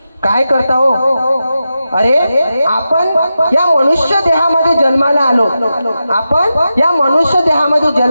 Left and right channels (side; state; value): both; inverted; correlation -0.91